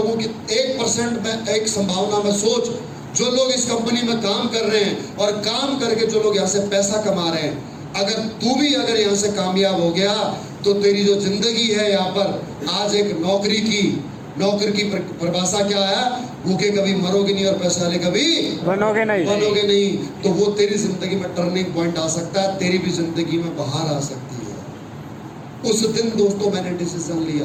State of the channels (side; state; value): both; identical; correlation 1.00